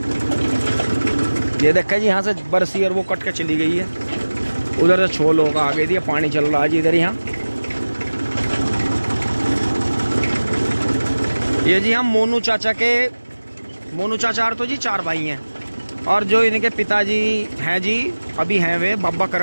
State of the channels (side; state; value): both; inverted; correlation -1.00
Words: ये देखा जी यहाँ से बरसी और वो कट के चली गई है, उधर से छोल होगा आगे दिया, पानी चल रहा है जी इधर। यहाँ ये जी हम मोनू चाचा तो जी 4 भाई हैं। और जो इनके पिताजी हैं जी, अभी हैं वे बाबा